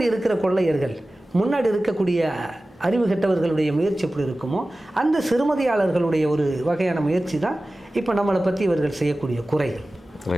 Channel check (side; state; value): both; normal; correlation 0.96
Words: இருக்கிற கொள்ளையர்கள், முன்னாடி இருக்கக்கூடிய அறிவு கெட்டவர்களுடைய முயற்சி எப்படி இருக்குமோ அந்த சிறுமதியாளர்களுடைய ஒரு வகையான முயற்சி தான் இப்போ நம்மளை பற்றி இவர்கள் செய்யக்கூடிய குறைகள்.